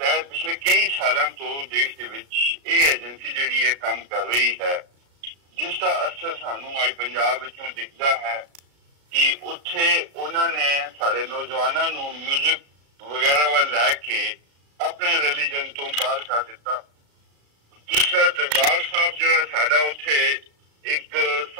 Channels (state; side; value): late; left; 36 ms